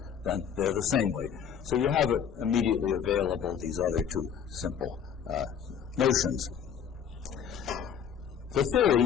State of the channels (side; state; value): right; quieter; 7.9 dB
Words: then they're the same weight. So you have it immediately available, these other two simple notions. The